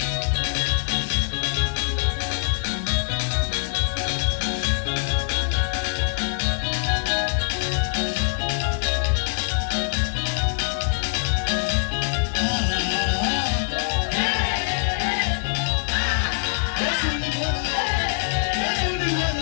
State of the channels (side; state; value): right; silent; digital silence